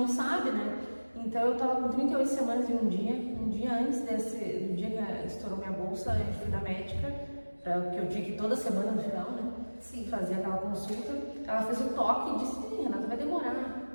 sabe, né? Então, eu tava com 38 semanas e um dia antes do dia que estourou minha bolsa, eu fui na médica, porque eu tinha que ir toda semana no final, né? Sim. Fazer aquela consulta. Ela fez o toque e disse: Renata, vai demorar.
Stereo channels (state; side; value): inverted; both; correlation -1.00